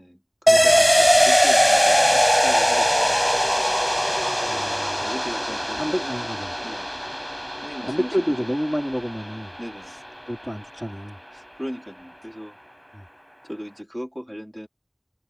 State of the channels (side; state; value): both; identical; correlation 1.00